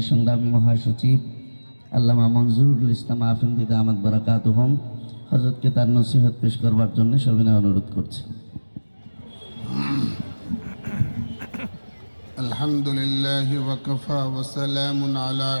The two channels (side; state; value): both; inverted; correlation -1.00